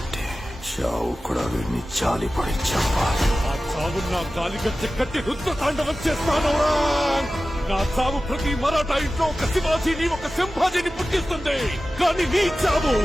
చావు కూడా వీడిని జాలి పడి చంపాలి. ఆ చావు నా గాలిగచ్చ కట్టి రుద్ర తాండవం చేస్తాను. నా చావు ప్రతి మరాఠా ఇంట్లో ఒక శివాజీని ఒక సంభాజీని పుట్టిస్తుంది. కానీ నీ చావు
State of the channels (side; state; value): both; normal; correlation 0.95